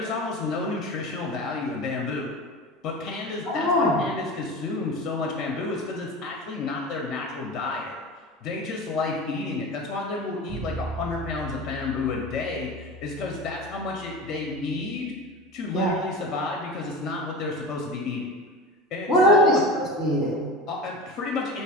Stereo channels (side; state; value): both; normal; correlation 0.30